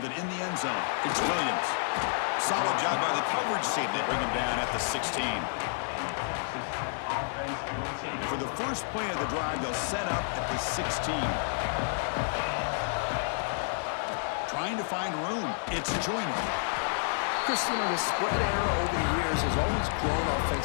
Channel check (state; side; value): silent; right; digital silence